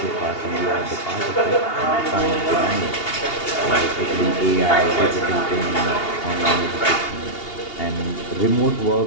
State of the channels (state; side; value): late; right; 2.8 ms